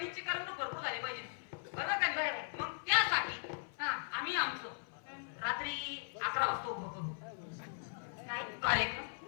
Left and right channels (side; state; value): right; silent; 52 dB below the other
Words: करमणूक भरपूर झाली पाहिजे. बरोबर का? बरोबर. मग त्यासाठी हा आम्ही आमचं रात्री 11 वाजता उभं करू काय कार्यक्रम.